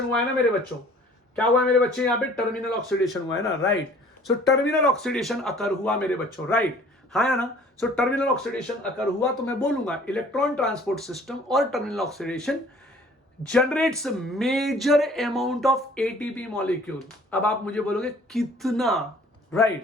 हुआ है ना मेरे बच्चों। क्या हुआ है मेरे बच्चे? यहां पे टर्मिनल ऑक्सीडेशन हुआ है ना, राइट। सो टर्मिनल ऑक्सीडेशन अकर हुआ मेरे बच्चों, राइट, हाँ या ना। सो टर्मिनल ऑक्सीडेशन अकर हुआ तो मैं बोलूंगा इलेक्ट्रॉन ट्रांसपोर्ट सिस्टम और terminal oxidation generates major amount of ATP molecule. अब आप मुझे बोलोगे कितना,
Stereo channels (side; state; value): both; normal; correlation 0.52